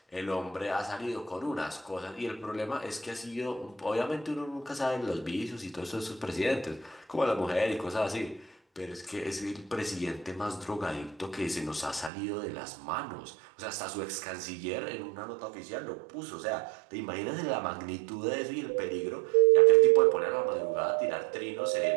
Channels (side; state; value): left; drops out; at 12.1 s